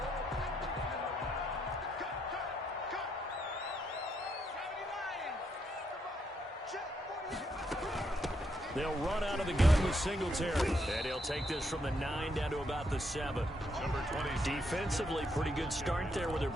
They'll run out of the gun with Singletary. And he'll take this from the 9 down to about the 7. Number 20. Defensively, pretty good start there with their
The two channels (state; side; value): normal; both; correlation 0.77